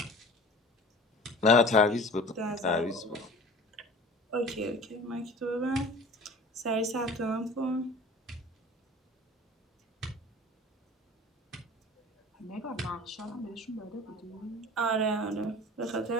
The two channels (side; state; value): both; normal; correlation 0.42